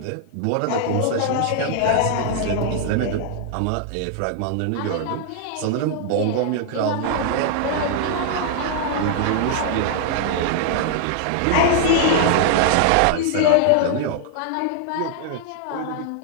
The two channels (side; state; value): both; different; correlation 0.00